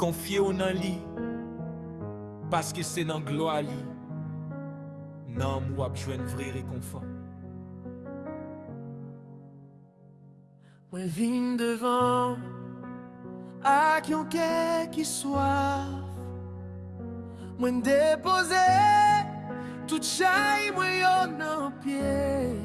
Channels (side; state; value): both; identical; correlation 1.00